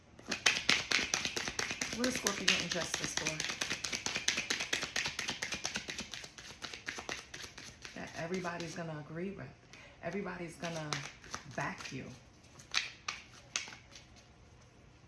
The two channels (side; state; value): both; identical; correlation 1.00